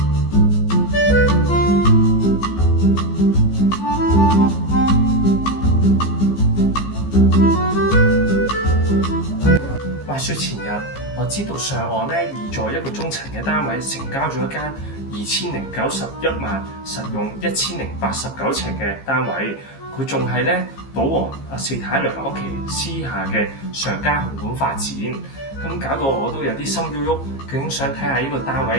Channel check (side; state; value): right; late; 15 ms